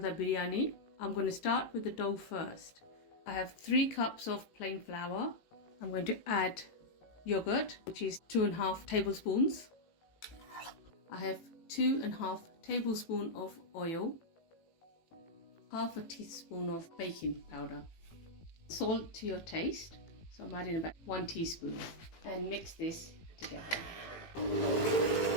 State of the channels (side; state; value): right; late; 18 ms